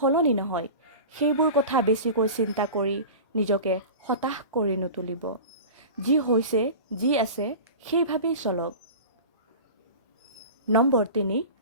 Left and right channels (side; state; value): both; inverted; correlation -0.33